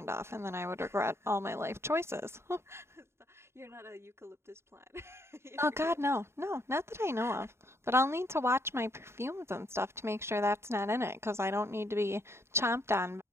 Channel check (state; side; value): late; left; 0.13 ms